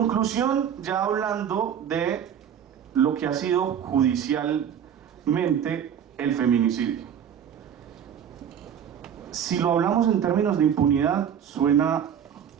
ya hablando de lo que ha sido judicialmente el feminicidio. Si lo hablamos en términos de impunidad, suena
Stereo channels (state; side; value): quieter; left; 8.7 dB